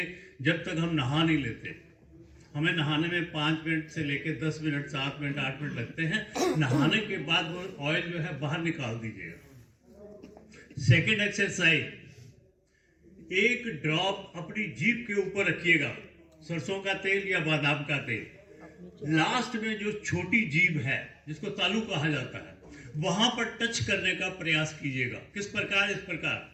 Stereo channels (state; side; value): identical; both; correlation 1.00